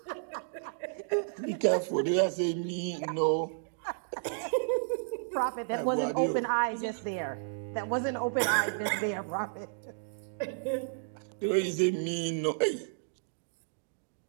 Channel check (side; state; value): left; silent; digital silence